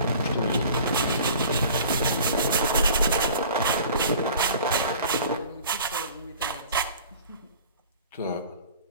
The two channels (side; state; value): both; inverted; correlation -0.45